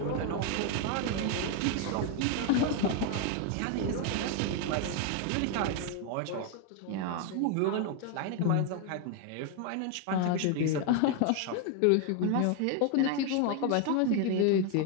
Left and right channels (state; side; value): different; both; correlation 0.01